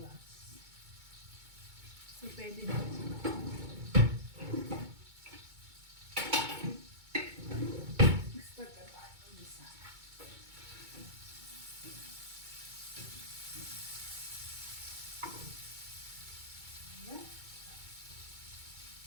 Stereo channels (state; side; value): late; left; 2.2 ms